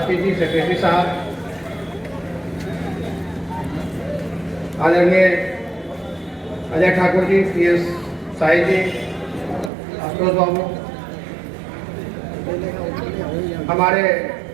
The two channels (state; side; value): drops out; left; at 9.7 s